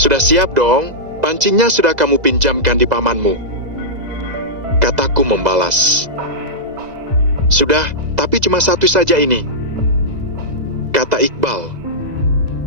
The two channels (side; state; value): left; late; 2.0 ms